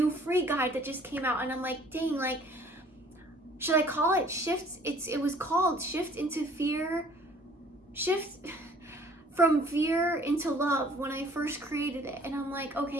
free guide that just came out, and I'm like, dang, like, should I call it shift? It was called Shift into Fear, Shift from Fear into Love when I first created it. And I'm like,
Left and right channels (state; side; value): normal; both; correlation 0.55